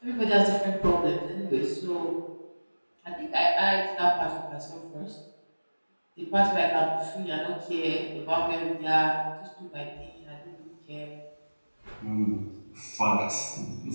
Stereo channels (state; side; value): inverted; both; correlation -1.00